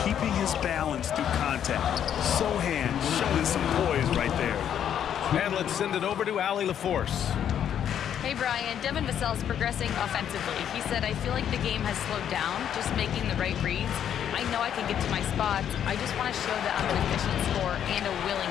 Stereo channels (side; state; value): right; quieter; 9.4 dB